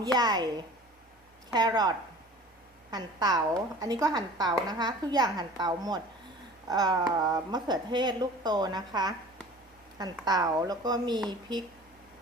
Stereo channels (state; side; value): normal; both; correlation 0.44